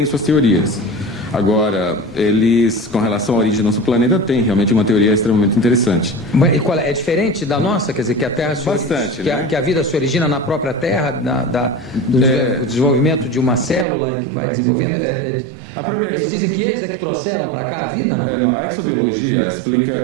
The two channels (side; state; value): left; drops out; at 13.9 s